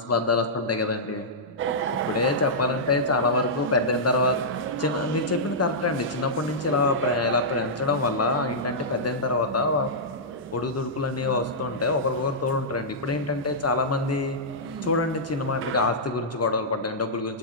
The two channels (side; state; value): both; normal; correlation -0.12